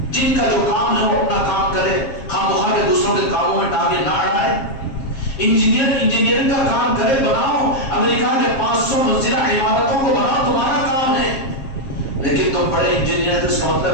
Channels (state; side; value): late; right; 7.4 ms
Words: جن کا جو کام ہے وہ اپنا کام کرے، خواہ کے دوسروں کے کاموں میں ٹانگیں نہ اڑائے۔ انجینئرنگ کا کام کرے، بناؤ امریکہ کے 500 منزلہ عمارتوں کو بناؤ، تمہارا کام ہے۔ لیکن تم بڑے انجینئر، تو اس کا